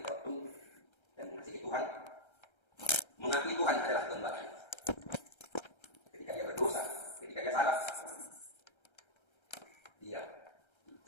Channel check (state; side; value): late; right; 1.3 ms